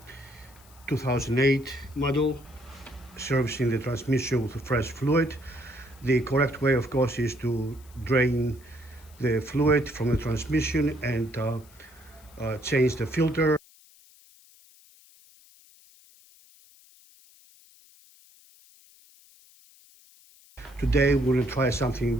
2008 model, servicing the transmission with fresh fluid. The correct way, of course, is to drain the fluid from the transmission and change the filter. Today we're going to try something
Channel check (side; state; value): left; noise; hiss, 26 dB below the sound